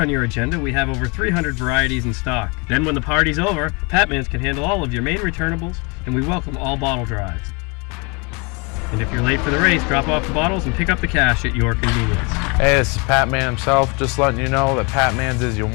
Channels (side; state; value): right; quieter; 30.4 dB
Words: your agenda, we have over 300 varieties in stock. Then when the party's over, Patman's can handle all of your Maine returnables, and we welcome all bottle drives. And if you're late for the race, drop off the bottles and pick up the cash at your convenience. Hey, this is Pat Man himself, just letting you know that Pat Man's is your